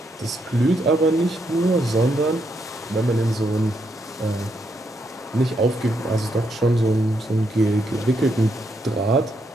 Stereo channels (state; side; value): normal; both; correlation 0.78